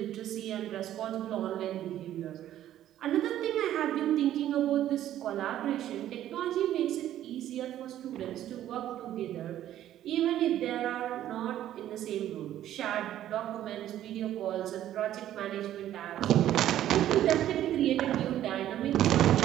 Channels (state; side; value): quieter; left; 12.2 dB